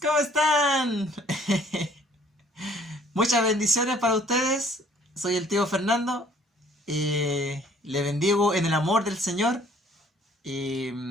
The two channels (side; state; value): both; normal; correlation 0.58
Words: están? Muchas bendiciones para ustedes. Soy el tío Fernando. Le bendigo en el amor del Señor.